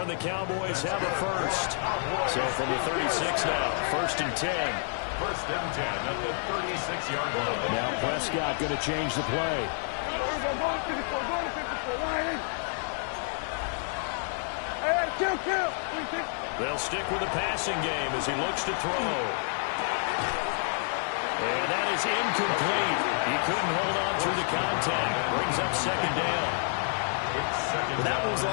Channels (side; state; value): right; silent; 59 dB below the other